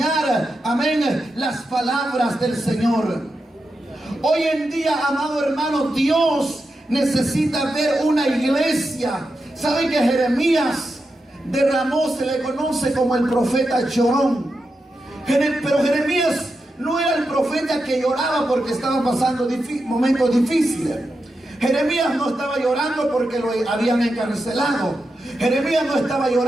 amén, las palabras del Señor. Hoy en día, amado hermano, Dios necesita ver una iglesia. ¿Saben que Jeremías derramó, se le conoce como el profeta llorón? Pero Jeremías no era el profeta que lloraba porque estaba pasando momentos difíciles. Jeremías no estaba llorando porque lo habían encarcelado. Jeremías no estaba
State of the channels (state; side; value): normal; both; correlation 0.88